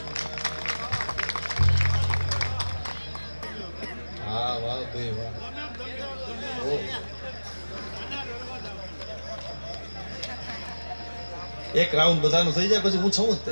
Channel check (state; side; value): inverted; both; correlation -1.00